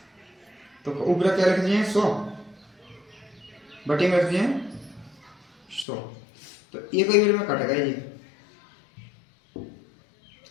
तो ऊपर क्या रख दिए 100 बटे में रख दिए 100, तो एक ही में कट गए ये,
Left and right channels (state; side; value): drops out; right; at 5.9 s